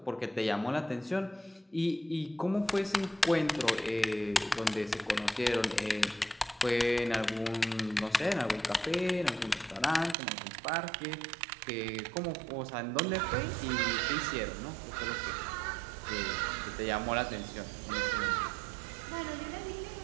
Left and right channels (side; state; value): left; drops out; at 10.2 s